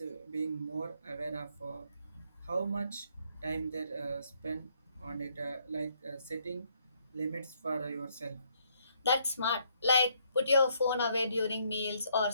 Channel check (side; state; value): both; inverted; correlation -0.70